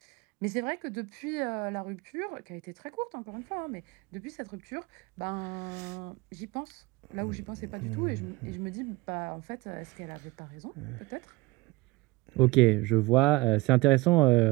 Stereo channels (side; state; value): left; quieter; 21.4 dB